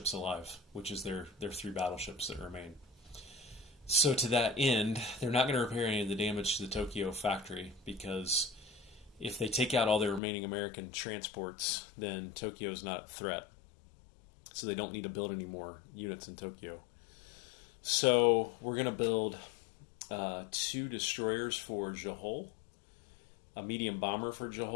alive, which is their three battleships that remain. So to that end, they're not going to repair any of the damage to the Tokyo factory, because if they take out all their remaining American transports, then Tokyo is not a threat. So they don't need to build any more units in Tokyo. So we're going to build 2 destroyers for Johor, a medium bomber for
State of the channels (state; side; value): drops out; right; at 10.2 s